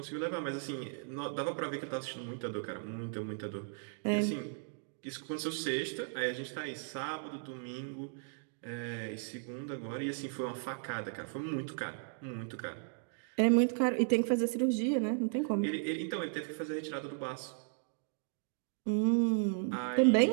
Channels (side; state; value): left; silent; digital silence